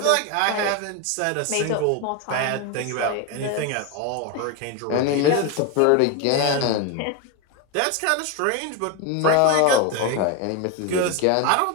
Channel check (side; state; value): both; different; correlation 0.02